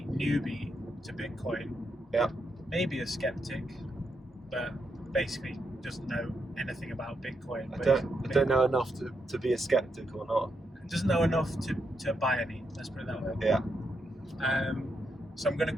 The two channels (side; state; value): both; normal; correlation 0.82